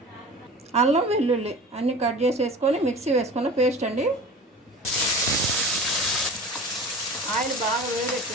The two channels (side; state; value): both; normal; correlation 0.38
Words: అల్లం వెల్లుల్లి అన్నీ కట్ చేసి వేసుకొని మిక్సీ వేసుకున్న పేస్ట్ అండి. ఆయిల్ బాగా